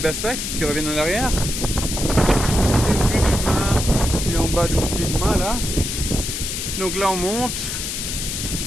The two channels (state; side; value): noise; left; hiss, 4 dB below the sound